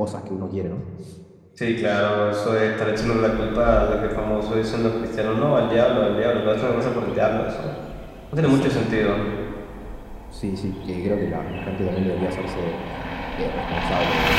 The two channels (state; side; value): identical; both; correlation 1.00